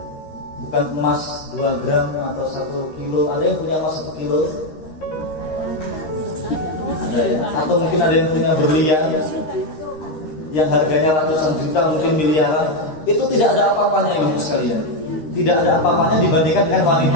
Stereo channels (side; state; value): right; late; 13 ms